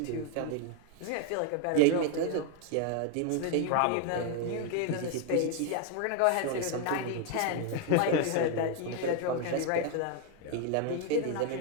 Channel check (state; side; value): different; both; correlation 0.01